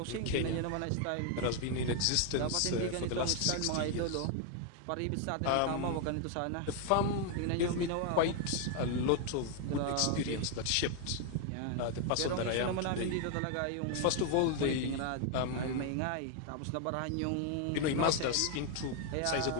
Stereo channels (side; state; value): both; different; correlation 0.01